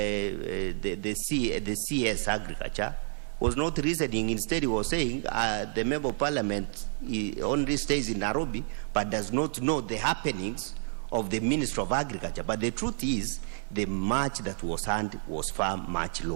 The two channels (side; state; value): left; silent; 58 dB below the other